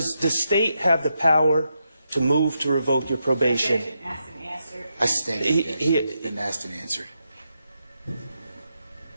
the state have the power to move to revoke your probation? Objection, asked and answered. I sustain the objection. It's been asked and answered.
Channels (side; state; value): both; inverted; correlation -0.84